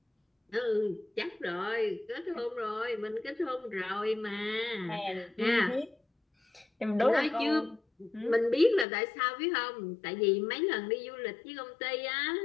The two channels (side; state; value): right; drops out; at 8.8 s